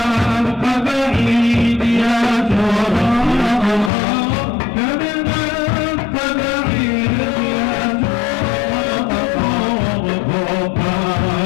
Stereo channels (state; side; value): drops out; right; at 3.9 s